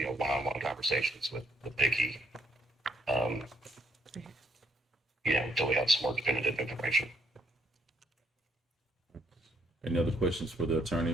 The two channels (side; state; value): both; normal; correlation 0.69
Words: conversations with Vicky. Until we have some more definitive information. Any other questions for the